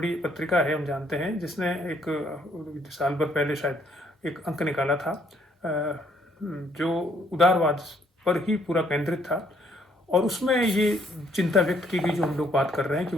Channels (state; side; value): normal; both; correlation 0.66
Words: पत्रिका है, हम जानते हैं, जिसने एक साल भर पहले शायद एक अंक निकाला था जो उदारवाद पर ही पूरा केंद्रित था, और उसमें ये चिंता व्यक्त की गई जो हम लोग बात कर रहे हैं कि